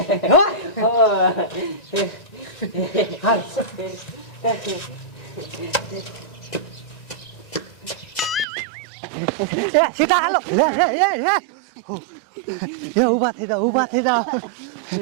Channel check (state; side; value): drops out; left; at 8.5 s